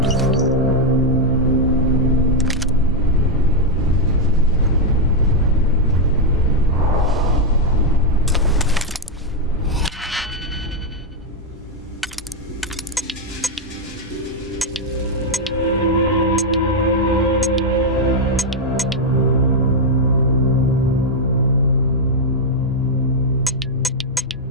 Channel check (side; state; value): both; normal; correlation 0.01